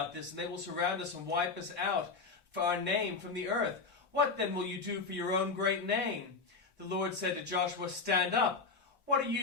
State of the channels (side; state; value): right; quieter; 4.4 dB